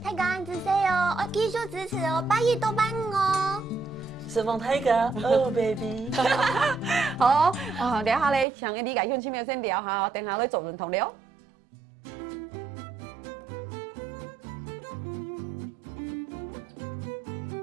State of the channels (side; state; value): left; drops out; at 8.5 s